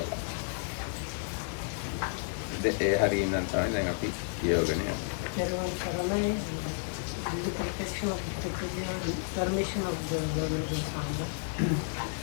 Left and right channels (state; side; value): silent; right; 57 dB below the other